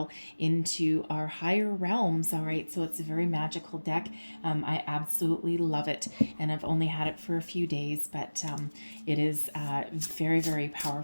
into our higher realms. All right, so it's a very magical deck. I absolutely love it, and I've only had it for a few days, but it is very, very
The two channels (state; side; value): inverted; both; correlation -1.00